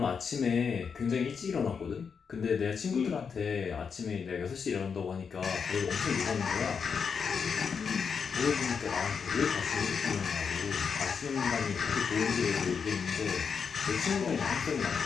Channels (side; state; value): right; quieter; 6.2 dB